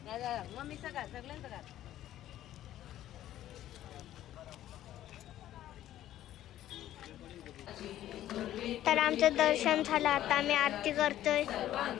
मम्मी सगळं सगळ्यांचं का तर आमचं दर्शन झालं आता आम्ही आरती करतोय.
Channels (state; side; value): quieter; right; 12.9 dB